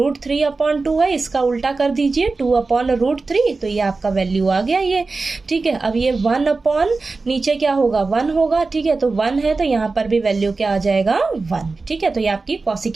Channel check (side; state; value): left; quieter; 3.9 dB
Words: है, इसका उल्टा कर दीजिए 2/√3, तो ये आपका वैल्यू आ गया ये। ठीक है, अब ये 1/ नीचे क्या होगा, 1 होगा। ठीक है, तो 1 है तो यहाँ पर भी वैल्यू क्या आ जाएगा, 1। ठीक है, तो ये आपकी